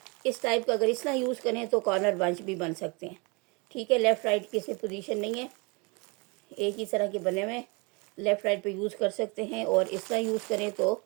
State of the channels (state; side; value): quieter; left; 29.7 dB